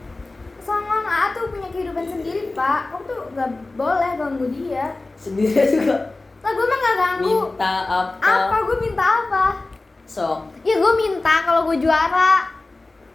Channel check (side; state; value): right; quieter; 3.2 dB